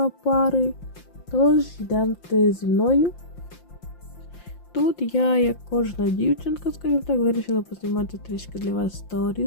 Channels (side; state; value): right; late; 5.7 ms